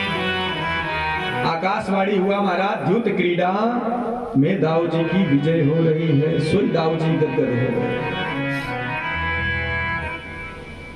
आकाशवाणी हुआ महाराज, द्यूत क्रीड़ा में दाऊ जी की विजय हो रही है। सोई दाऊ जी गदगद हो गए।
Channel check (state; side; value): identical; both; correlation 1.00